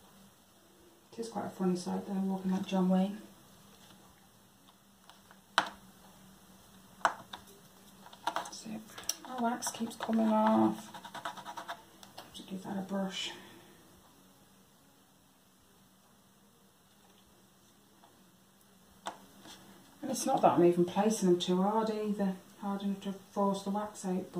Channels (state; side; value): identical; both; correlation 1.00